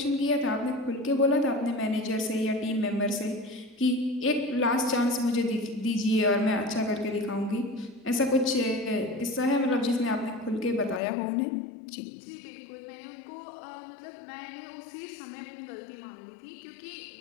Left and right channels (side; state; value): right; drops out; at 11.0 s